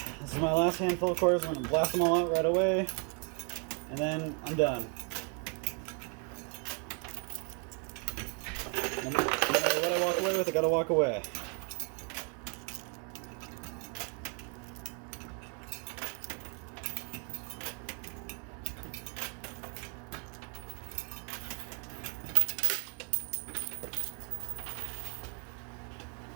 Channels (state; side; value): quieter; left; 36.3 dB